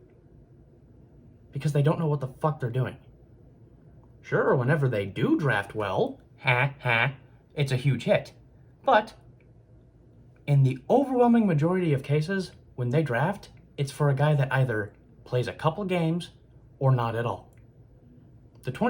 because they don't know what the fuck they're doing. Sure, whenever they do draft well, it's a huge hit. But in the overwhelming majority of cases, when they draft, it's for a guy that either plays a couple games or not at all. The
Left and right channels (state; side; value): identical; both; correlation 1.00